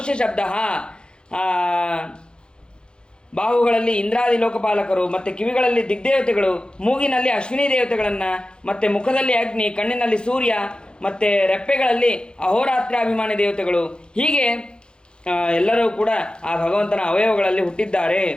ಶಬ್ದ, ಬಾಹುಗಳಲ್ಲಿ ಇಂದ್ರಾದಿ ಲೋಕಪಾಲಕರು, ಮತ್ತು ಕಿವಿಗಳಲ್ಲಿ ದಿಗ್ದೇವತೆಗಳು, ಮೂಗಿನಲ್ಲಿ ಅಶ್ವಿನಿ ದೇವತೆಗಳನ್ನು, ಮತ್ತು ಮುಖದಲ್ಲಿ ಅಗ್ನಿ, ಕಣ್ಣಿನಲ್ಲಿ ಸೂರ್ಯ, ಮತ್ತು ರೆಪ್ಪೆಗಳಲ್ಲಿ ಅಹೋರಾತ್ರಾಭಿಮಾನಿ ದೇವತೆಗಳು. ಹೀಗೆ ಎಲ್ಲರೂ ಕೂಡ ಆ ಭಗವಂತನ ಅವಯವಗಳಲ್ಲಿ ಹುಟ್ಟಿದ್ದಾರೆ.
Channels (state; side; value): late; right; 0.050 ms